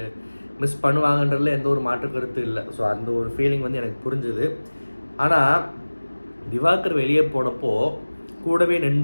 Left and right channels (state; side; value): inverted; both; correlation -1.00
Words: பண்ணுவாங்கன்றதுல எந்த ஒரு மாற்று கருத்து இல்லை. ஸோ அந்த ஒரு ஃபீலிங் எனக்கு புரிஞ்சுது. ஆனால் திவாகர் வெளியே போனப்போ கூடவே